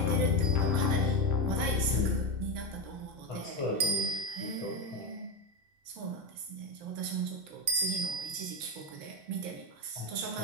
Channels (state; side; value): late; left; 2.7 ms